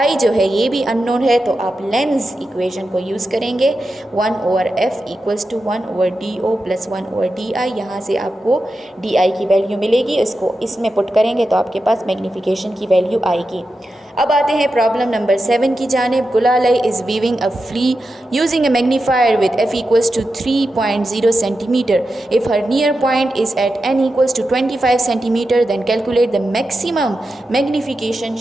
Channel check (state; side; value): normal; both; correlation 0.90